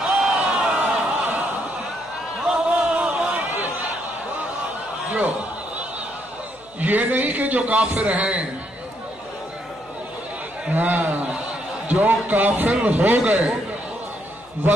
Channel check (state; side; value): noise; left; hum, 29 dB below the sound